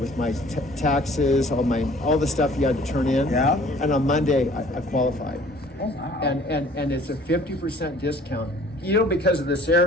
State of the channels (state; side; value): normal; both; correlation 0.53